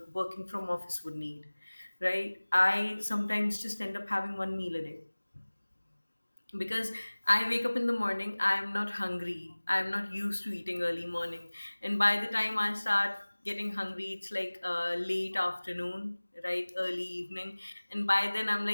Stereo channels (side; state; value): both; inverted; correlation -1.00